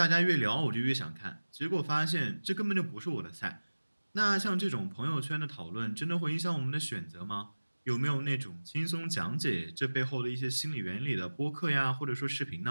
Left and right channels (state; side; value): inverted; both; correlation -1.00